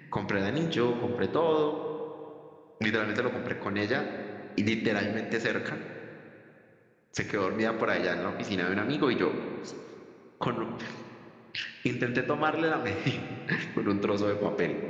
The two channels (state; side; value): identical; both; correlation 1.00